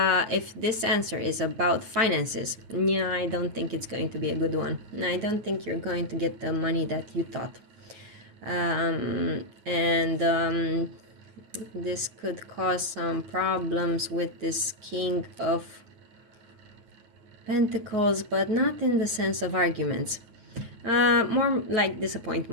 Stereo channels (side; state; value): left; late; 9.3 ms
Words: this answer is about finances, yeah, I don't think it's going to be a good one. I don't think you're going to get the money that you thought. This could cause some problems with this King of Pentacles, but not in the sense of arguments. More like